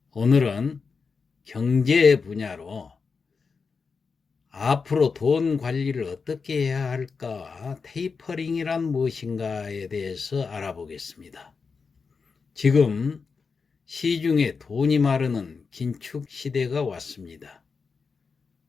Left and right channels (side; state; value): right; quieter; 5.1 dB